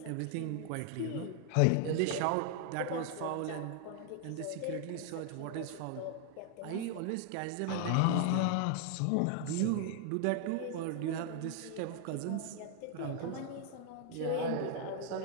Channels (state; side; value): different; both; correlation 0.00